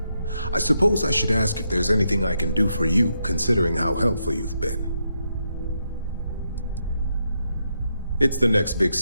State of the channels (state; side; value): inverted; both; correlation -0.81